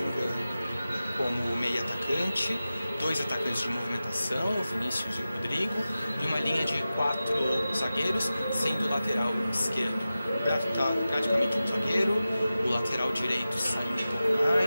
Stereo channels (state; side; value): inverted; both; correlation -0.95